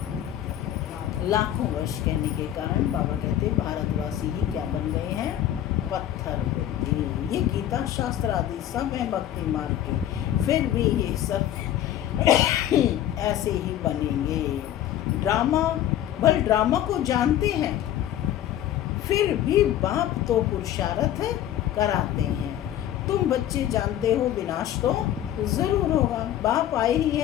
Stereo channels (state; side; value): quieter; right; 11.8 dB